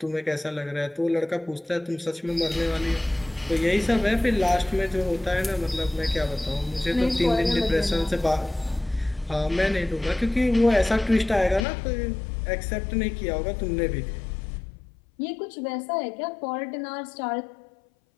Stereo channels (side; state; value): right; drops out; at 11.7 s